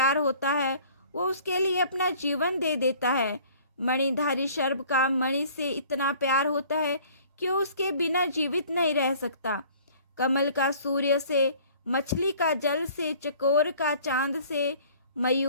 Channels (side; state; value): both; inverted; correlation -0.52